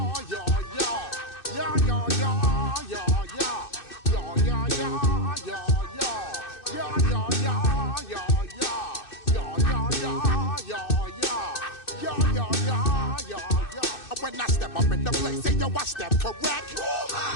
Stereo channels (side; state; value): right; late; 2.6 ms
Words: When I step up in the place, say yo, I step correct.